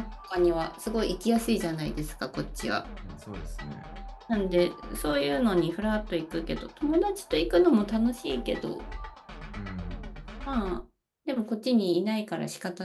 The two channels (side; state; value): both; identical; correlation 1.00